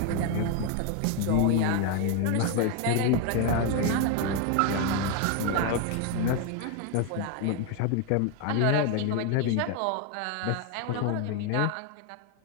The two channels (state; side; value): different; both; correlation 0.01